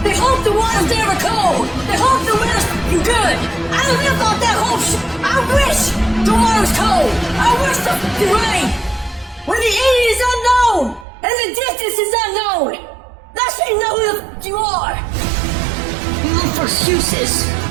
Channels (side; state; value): left; drops out; at 11.1 s